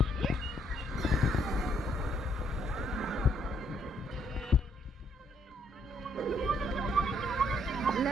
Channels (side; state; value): both; normal; correlation 0.70